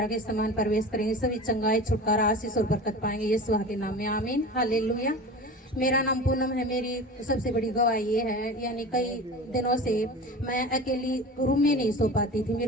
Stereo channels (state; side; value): normal; both; correlation 0.34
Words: के समान प्रवेश करेंगे, सभी चंगाई छुटकारा आशीष और बरकत पाएंगे यीशु के नाम में, आमीन। हालेलुया। मेरा नाम पूनम है। मेरी सबसे बड़ी गवाही ये है, यानी कई दिनों से मैं अकेली रूम में नहीं सो पाती थी,